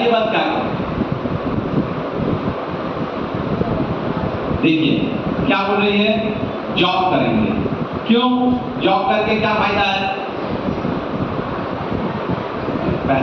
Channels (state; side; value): identical; both; correlation 1.00